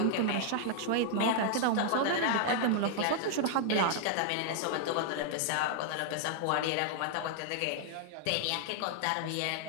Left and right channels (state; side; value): different; both; correlation 0.00